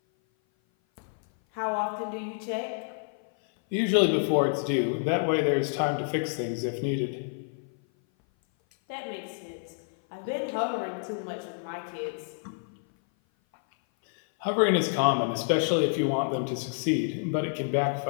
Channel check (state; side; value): silent; right; 56 dB below the other